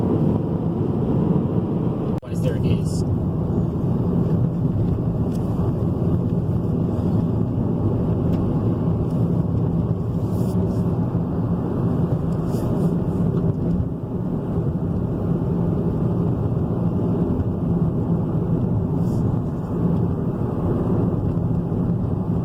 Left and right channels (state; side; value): identical; both; correlation 1.00